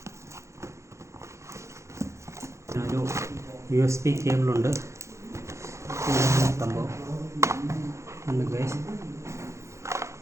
ഒരു USB കേബിളുണ്ട്, സംഭവം ഉണ്ട് ഗൈസ്.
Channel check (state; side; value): late; left; 0.14 ms